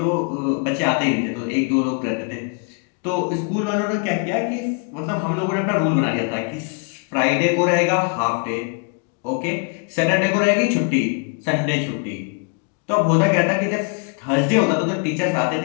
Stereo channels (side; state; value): right; quieter; 35.0 dB